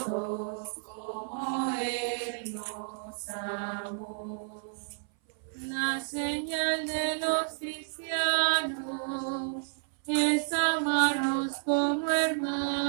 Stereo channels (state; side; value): silent; left; 57 dB below the other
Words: como Él nos amó. La señal de los cristianos es amarnos como